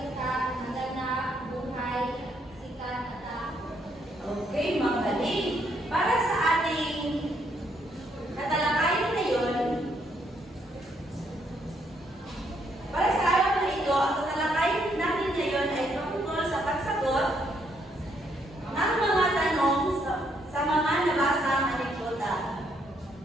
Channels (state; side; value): normal; both; correlation 0.73